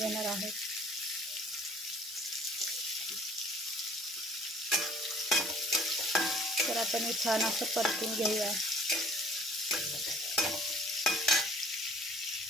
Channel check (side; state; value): both; normal; correlation 0.54